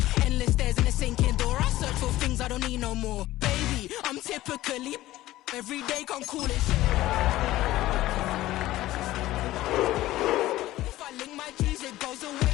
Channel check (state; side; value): quieter; right; 16.0 dB